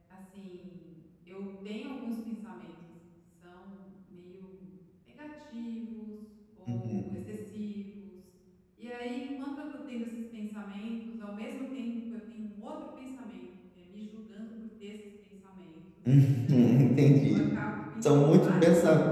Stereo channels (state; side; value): identical; both; correlation 1.00